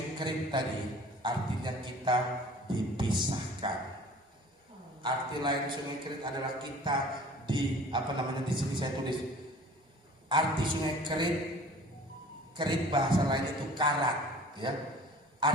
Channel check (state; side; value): normal; both; correlation 0.46